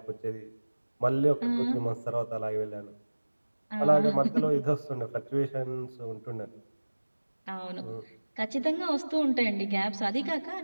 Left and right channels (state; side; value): inverted; both; correlation -1.00